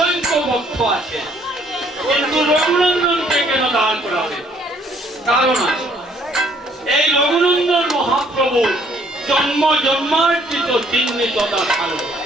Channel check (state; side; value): normal; both; correlation 0.63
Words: ভক্ত আছে, কিন্তু রঘুনন্দনকে কেন দাঁড় করাবে? কারণ আছে। এই রঘুনন্দন প্রভু জন্ম জন্মার্জিত চিহ্নিত দেখালো।